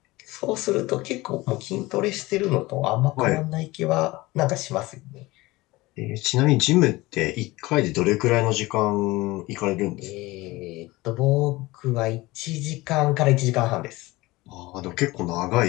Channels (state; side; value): quieter; right; 20.4 dB